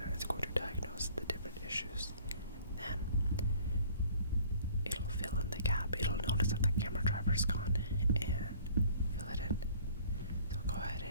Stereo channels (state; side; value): inverted; both; correlation -0.52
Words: it's going to diagnose the different issues. Then it'll fill in the gap. It'll notice that the camera driver's gone and fill it in. So go ahead